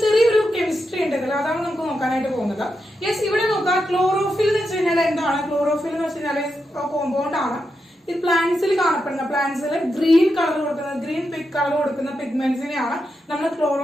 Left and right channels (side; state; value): both; normal; correlation 0.86